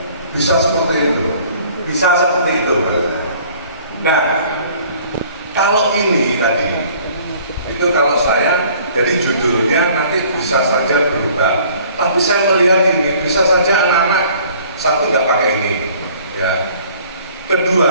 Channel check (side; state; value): both; inverted; correlation -0.54